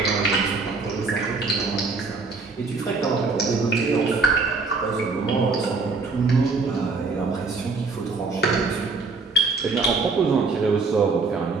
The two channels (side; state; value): left; quieter; 4.2 dB